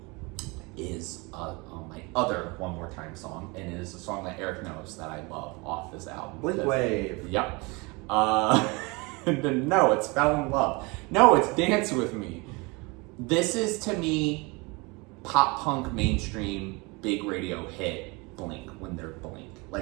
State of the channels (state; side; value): quieter; left; 27.0 dB